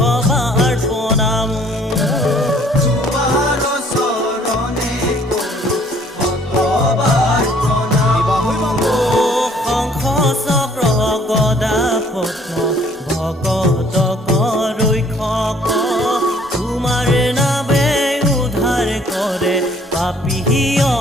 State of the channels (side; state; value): both; normal; correlation 0.59